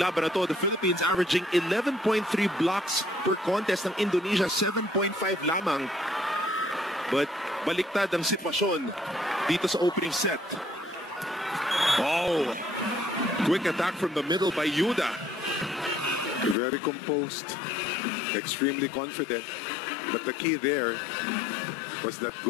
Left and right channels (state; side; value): drops out; right; at 16.6 s